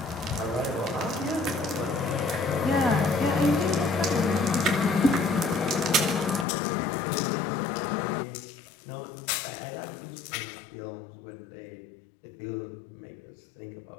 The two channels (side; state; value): right; drops out; at 6.5 s